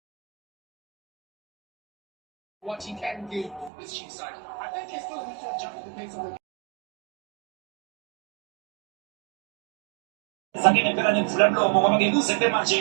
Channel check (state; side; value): drops out; left; at 3.7 s